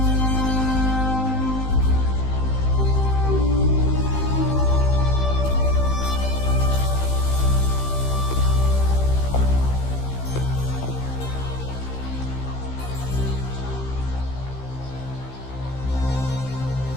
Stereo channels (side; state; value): right; late; 15 ms